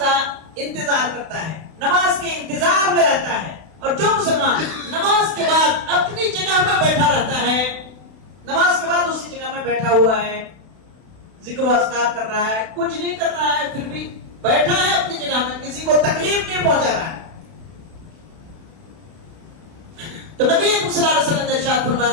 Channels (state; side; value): late; left; 32 ms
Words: انتظار کرتا ہے، نماز کے انتظار میں رہتا ہے، اور جو مسلمان نماز کے بعد اپنی جگہ میں بیٹھا رہتا ہے، نماز کے بعد اسی جگہ میں بیٹھا ہوا ہے، ذکر و اذکار کر رہا ہے، کچھ نہیں کر رہا ہے، پھر بھی بیٹھا ہے اپنی جگہ میں، کسی کو تکلیف نہیں پہنچا رہا ہے، تو نبی صلی اللہ علیہ وسلم نے ارشاد